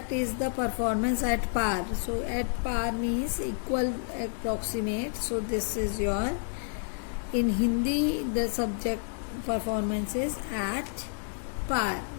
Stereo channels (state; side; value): silent; right; digital silence